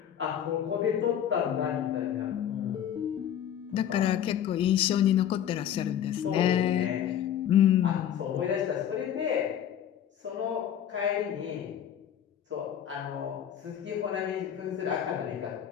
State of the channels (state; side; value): quieter; right; 9.9 dB